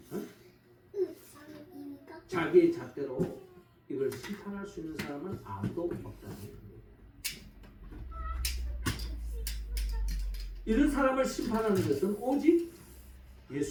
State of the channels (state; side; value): identical; both; correlation 1.00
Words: 자기의 잣대로 이걸 심판할 수 있는 사람은 아무도 없다는 겁니다. 이런 사람을 심판하는 것은 오직